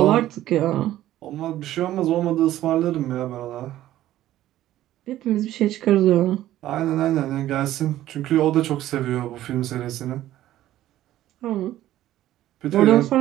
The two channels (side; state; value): left; quieter; 13.8 dB